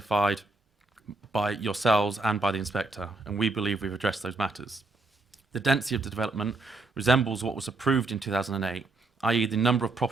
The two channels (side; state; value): left; quieter; 3.2 dB